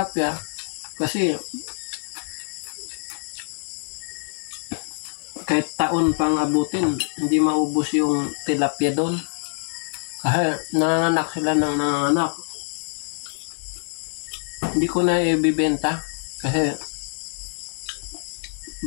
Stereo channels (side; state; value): right; silent; digital silence